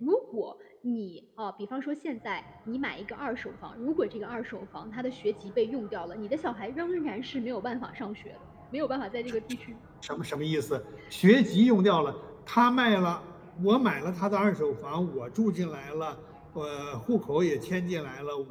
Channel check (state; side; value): identical; both; correlation 1.00